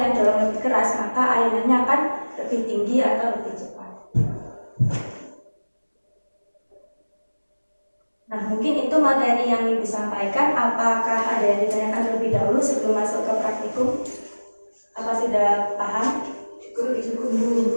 dorong lebih keras, maka ayunannya akan lebih tinggi atau lebih cepat. Nah, mungkin itu materi yang Ibu sampaikan. Apakah ada yang ditanyakan terlebih dahulu sebelum masuk ke praktikum? Apa sudah paham?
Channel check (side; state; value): both; inverted; correlation -1.00